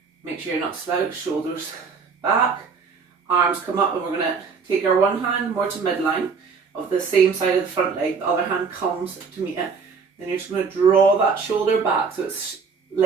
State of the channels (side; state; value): left; quieter; 5.3 dB